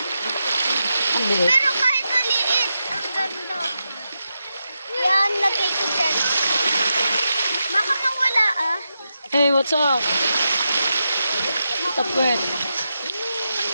Ang liit. Pero kahit maliit, ang ganda. Yan, lagay ko dyan. Baka mawala ah. Hey, what's up? Tapwet.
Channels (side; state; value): both; inverted; correlation -0.88